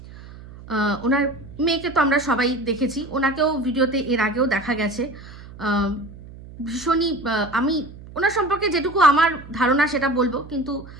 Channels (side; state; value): right; noise; hum, 17 dB below the sound